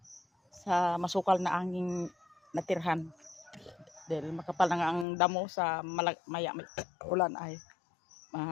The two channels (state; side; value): drops out; right; at 5.1 s